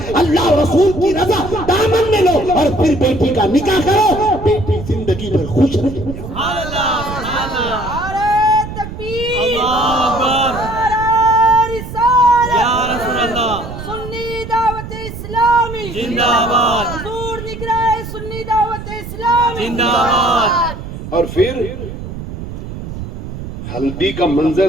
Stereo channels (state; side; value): noise; right; rumble, 9 dB below the sound